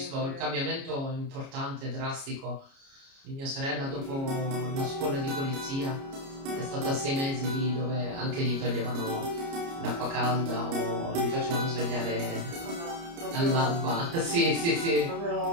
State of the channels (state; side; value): late; left; 29 ms